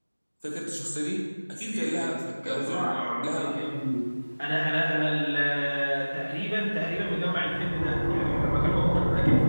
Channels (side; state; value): both; inverted; correlation -1.00